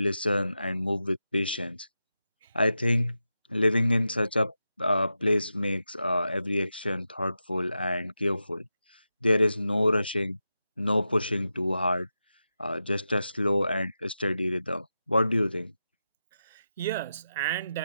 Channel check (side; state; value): both; inverted; correlation -0.90